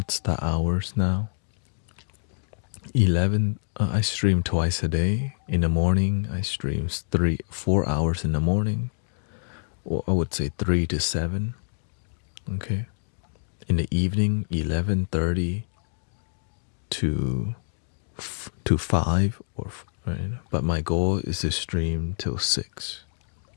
the hours now? 11. I stream twice a day. In the morning, I stream 4 hours in the morning, or I would say 3 to 7. Okay. In the evening, 11:30. To 5 or right, but my goal is to stream till 6.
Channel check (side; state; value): right; silent; digital silence